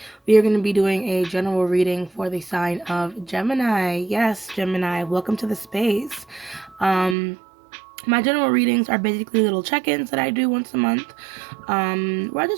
we are going to be doing a general reading for the sign of Gemini. Yes, Gemini, welcome to the space. My general readings are basically little check-ins that I do once a month. Where I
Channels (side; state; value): left; drops out; at 7.2 s